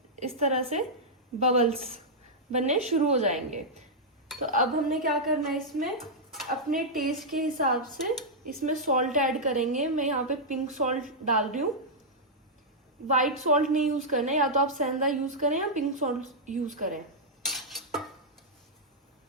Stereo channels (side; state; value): both; normal; correlation -0.07